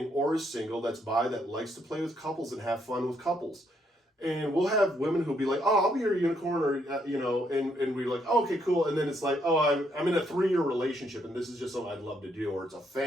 or is single that's bi that likes to play with couples and have fun with couples. And we'll have women who'll be like, "Oh, I'll be your unicorn," or you know, and we're like, "Oh, okay, cool." And then it's like, "Oh, I'm in a 3-year relationship, and this is just something I'd love to do, or it's a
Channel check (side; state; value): both; normal; correlation 0.73